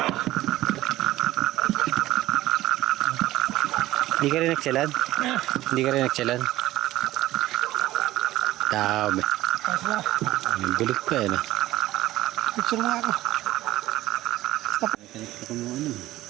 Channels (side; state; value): left; quieter; 16.0 dB